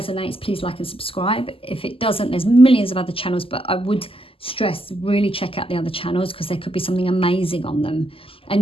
please like and subscribe. If it doesn't, there's millions of other channels, but I would stress, really check out the other channels, because there could be something amazing on them.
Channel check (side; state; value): right; late; 0.26 ms